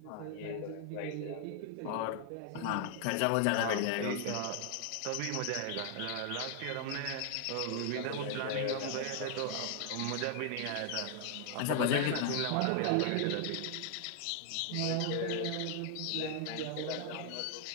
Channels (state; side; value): different; both; correlation 0.00